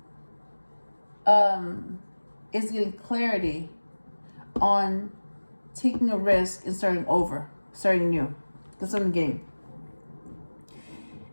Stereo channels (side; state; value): both; inverted; correlation -1.00